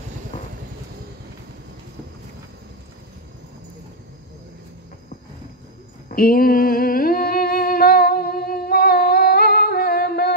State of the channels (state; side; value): normal; both; correlation 0.00